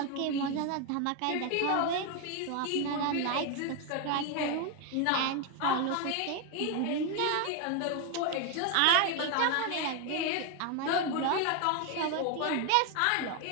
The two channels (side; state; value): both; different; correlation 0.01